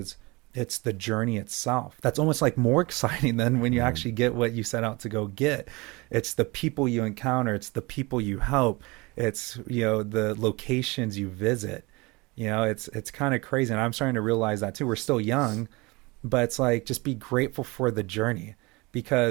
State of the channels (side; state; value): left; quieter; 24.6 dB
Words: it's the journey itself that's almost like more exciting than when you actually get what you set out to go get. It's the people you encounter, it's the people you help, it's, you know, the locations you visit. You know, it's kind of crazy, and I'm starting to realize that too. We're still young, but it's like, just be grateful for the journey,